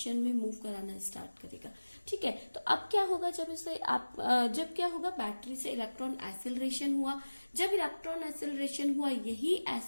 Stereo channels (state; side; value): inverted; both; correlation -1.00